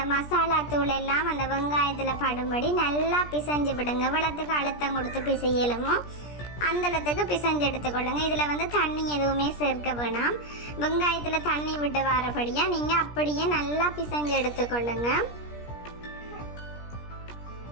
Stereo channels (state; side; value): late; right; 17 ms